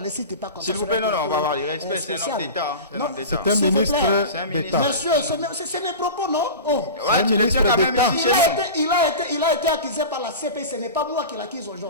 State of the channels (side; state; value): both; inverted; correlation -0.31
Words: cite pas comme ça. S'il vous plaît, non, on va avoir du respect, c'est un homme d'État. C'est un ministre d'État. Monsieur, c'est mes propos, non? Ouais, tu le tiens quand même ici. Il a été accusé par la CPI, ce n'est pas moi qui l'accuse